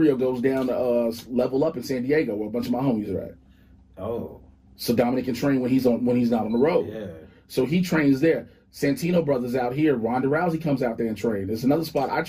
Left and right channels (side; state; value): both; identical; correlation 1.00